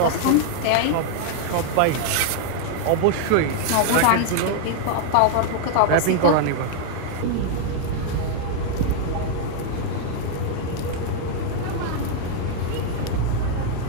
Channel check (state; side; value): different; both; correlation 0.00